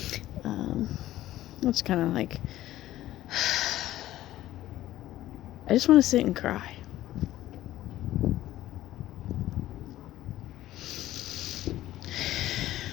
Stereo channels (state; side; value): quieter; right; 14.5 dB